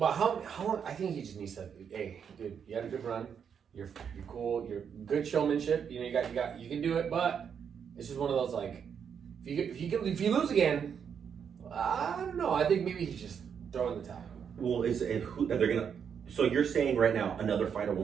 how long? I think he just needs to. Hey, dude, you had a good run. You're cool. You're good showmanship. You can do it. But it's just one of those like, if you lose again, I don't know. I think maybe he's just throwing the towel. Well, they're gonna? So you're saying right now another fighter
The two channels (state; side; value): quieter; left; 7.4 dB